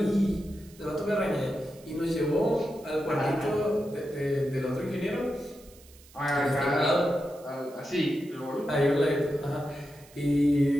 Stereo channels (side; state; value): right; noise; hiss, 24 dB below the sound